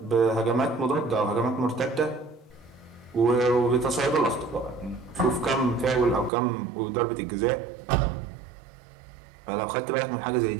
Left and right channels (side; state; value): left; drops out; at 6.3 s